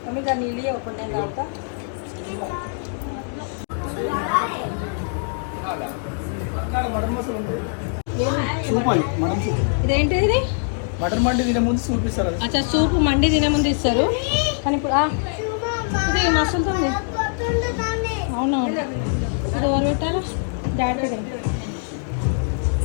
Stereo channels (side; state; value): right; silent; 64 dB below the other